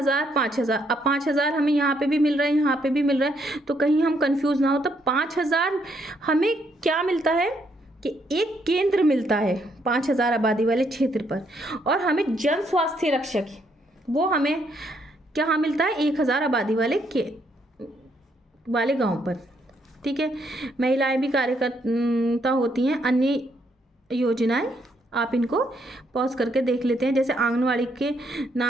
5000। अब 5000 हमें यहाँ पे भी मिल रहा है, यहाँ पे भी मिल रहा है, तो कहीं हम कंफ्यूज ना हो। तो 5000 हमें क्या मिलता है कि एक केंद्र मिलता है 5000 आबादी वाले क्षेत्र पर, और हमें जन स्वास्थ्य रक्षक वो हमें क्या मिलता है? 1000 आबादी वाले गाँव पर। ठीक है। महिलाएं भी कार्यकर्ता होती हैं। अन्य योजनाएं आप इनको पॉज करके देख लेते हैं। जैसे आंगनवाड़ी के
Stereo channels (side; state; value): both; normal; correlation 0.73